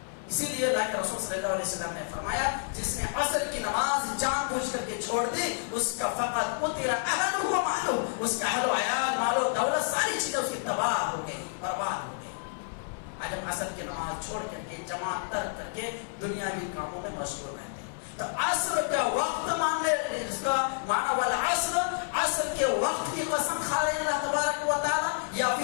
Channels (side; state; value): right; silent; 58 dB below the other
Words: اسی لیے اللہ کے رسول صلی اللہ علیہ وسلم نے فرمایا, جس نے عصر کی نماز جان بوجھ کر کے چھوڑ دی, اس کا فقط قتل اہلہ و مالہ, اس کا اہل و عیال, مال و دولت, ساری چیزیں اس کی تباہ ہو گئی, برباد ہو گئی. آج ہم عصر کی نماز چھوڑ کر کے, جماعت ترک کر کے دنیاوی کاموں میں مشغول رہتے ہیں. تو عصر کا وقت ماننے, اس کا معنی والعصر, عصر کے وقت کی قسم کھا رہے ہیں اللہ تبارک و تعالیٰ, یا